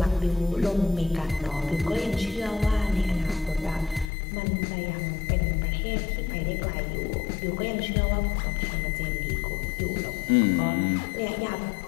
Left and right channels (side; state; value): right; drops out; at 4.1 s